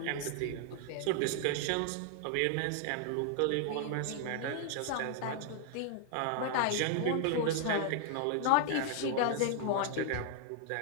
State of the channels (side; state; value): both; different; correlation 0.00